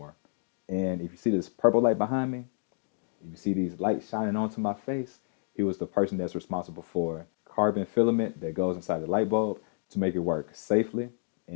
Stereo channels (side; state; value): right; silent; digital silence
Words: And if you see this purple light behind me, if you see these lights shining onto my face, he was the person that's responsible for carbon filament that goes inside the light bulb to make it work safely